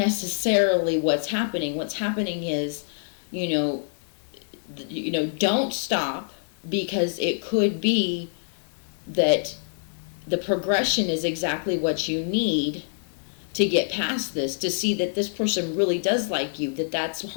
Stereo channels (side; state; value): right; silent; digital silence